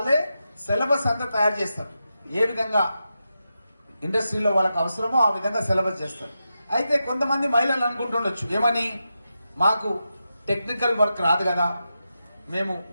సిలబస్ అంతా తయారు చేస్తారు. ఏ విధంగా ఇండస్ట్రీలో వాళ్ళకి అవసరమో ఆ విధంగా సిలబస్ చేస్తారు. అయితే కొంతమంది మహిళలు అనుకుంటుండొచ్చు, ఏమని, మాకు టెక్నికల్ వర్క్ రాదు కదా, మేము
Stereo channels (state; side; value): inverted; both; correlation -0.89